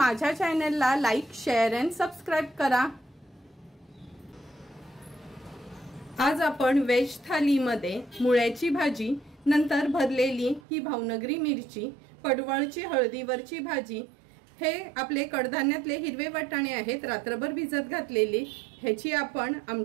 चॅनलला लाईक, शेअर अँड सबस्क्राइब करा। आज आपण वेज थालीमध्ये मुळ्याची भाजी, नंतर भरलेली ही भावनगरी मिरची, पडवळची हळदीवरची भाजी, हे आपले कडधान्यातले हिरवे वाटाणे आहेत रात्रभर भिजत घातलेले, ह्याची आपण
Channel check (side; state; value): left; drops out; at 10.6 s